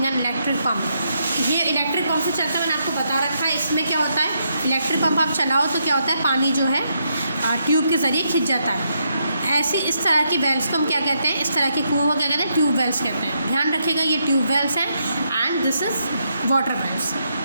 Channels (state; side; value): inverted; both; correlation -0.79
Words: an electric pump. ये इलेक्ट्रिक पम्प से चलता है, मैंने आपको बता रखा है। इसमें क्या होता है, इलेक्ट्रिक पम्प आप चलाओ तो क्या होता है, पानी जो है ट्यूब के ज़रिए खिंच जाता है। ऐसी इस तरह की वेल्स को हम क्या कहते हैं, इस तरह के कुओं को क्या कहते हैं, ट्यूब वेल्स कहते हैं। ध्यान रखिएगा, ये ट्यूब वेल्स हैं and this is water wells.